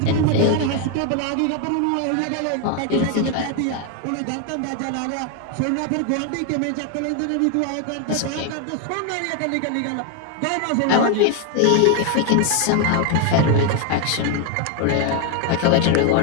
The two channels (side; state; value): both; different; correlation 0.01